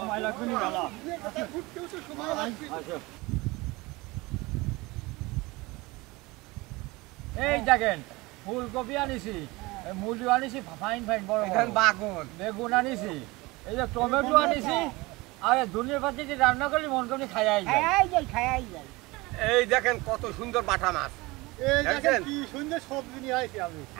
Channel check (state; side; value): quieter; left; 22.6 dB